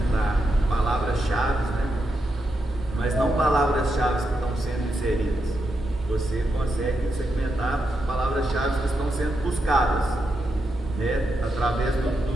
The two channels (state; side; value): normal; both; correlation 0.84